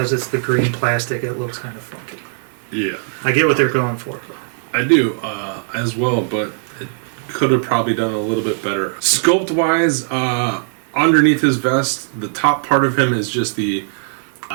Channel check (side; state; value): left; silent; 63 dB below the other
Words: it's the green plastic, it looks kind of funky. Yeah, I get what they're going for. I do as well, but it could have probably done a little bit better. Sculpt wise, underneath his vest, the top part of him is just